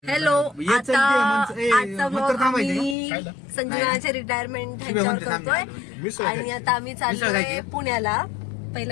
Hello. आता आजचा blog आम्ही संजनाचे रिटायरमेंट ह्यांच्यावर करतोय आणि आता आम्ही चाललोय पुण्याला.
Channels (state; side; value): drops out; right; at 3.0 s